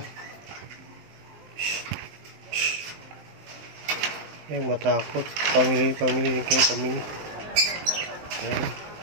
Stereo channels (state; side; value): late; left; 19 ms